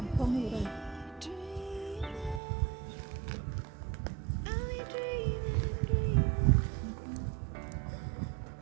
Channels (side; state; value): left; drops out; at 2.4 s